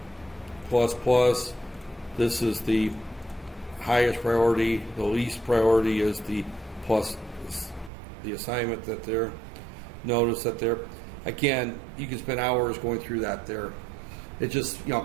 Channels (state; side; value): drops out; left; at 7.9 s